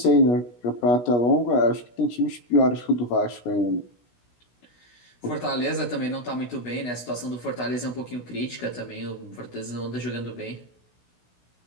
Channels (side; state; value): right; late; 16 ms